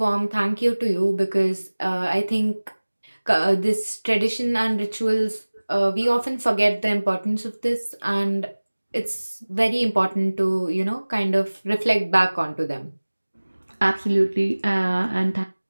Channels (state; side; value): inverted; both; correlation -1.00